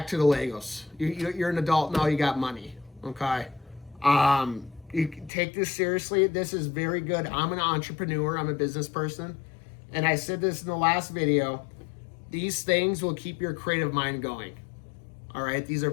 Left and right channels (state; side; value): drops out; right; at 5.3 s